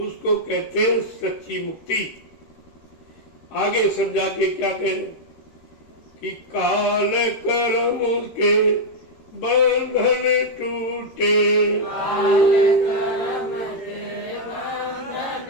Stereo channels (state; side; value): late; right; 13 ms